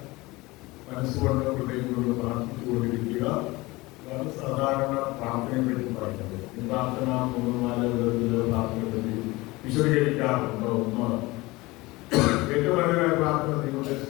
മനസ്സുകൊണ്ട് ഹൃദയം കൊണ്ട് പ്രാർത്ഥിച്ചുകൊണ്ടിരിക്കുക. അതാണ് സാധാരണ പ്രാർത്ഥനയെ പറ്റി പറയുന്നത്. ഈ പ്രാർത്ഥന 3-4 വിധത്തിൽ പ്രാർത്ഥനയെ പറ്റി വിശദീകരിക്കാറുണ്ട്. ഒന്ന്, ഏറ്റവും നല്ലതായ പ്രാർത്ഥന ദൈവത്തെ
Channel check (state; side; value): quieter; right; 21.6 dB